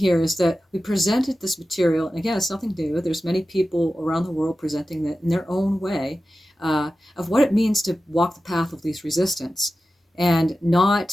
is that we presented this material. And again, it's nothing new. There's many people around the world presenting it in their own way uh, of what it means to walk the path of least resistance and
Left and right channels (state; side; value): normal; both; correlation 0.94